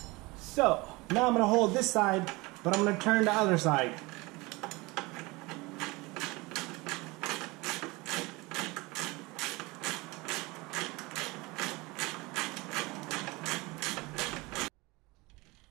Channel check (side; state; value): left; quieter; 23.5 dB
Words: So now I'm gonna hold this side, but I'm gonna turn the other side.